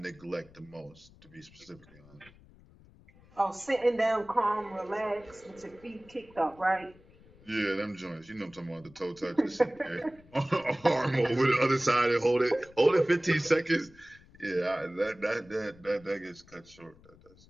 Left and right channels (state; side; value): noise; left; rumble, 25 dB below the sound